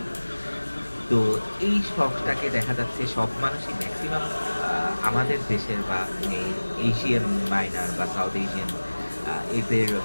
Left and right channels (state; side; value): inverted; both; correlation -1.00